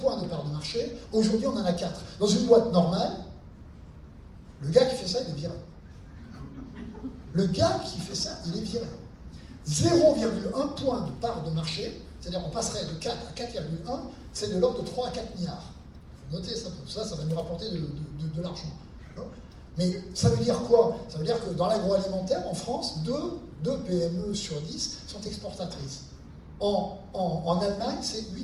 de part de marché. Aujourd'hui, on en a 4. Dans une boîte normale, le gars qui fait ça, il est viré. Le gars qui fait ça, il est viré. 0,1 point de part de marché, c'est-à-dire on passerait de 4 à 4,1, c'est de l'ordre de 3 à 4 milliards. Il faut noter ça, ça va nous rapporter de l'argent. Mais ça veut dire quoi? Ça veut dire que dans l'agroalimentaire, en France, 2 PME sur 10 sont exportatrices. En Allemagne, c'est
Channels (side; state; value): both; identical; correlation 1.00